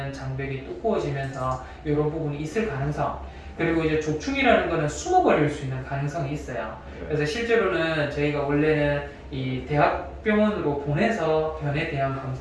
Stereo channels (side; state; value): both; identical; correlation 1.00